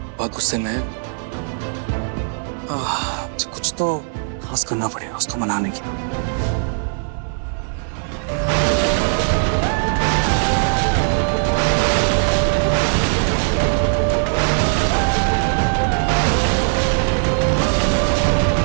बहुत गुस्से में है। कुछ तो खास करना पड़ेगा उसको मनाने के लिए।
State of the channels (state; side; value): silent; left; digital silence